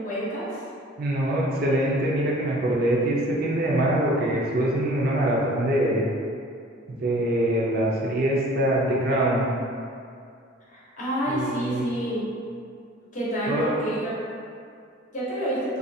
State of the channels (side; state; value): both; normal; correlation 0.48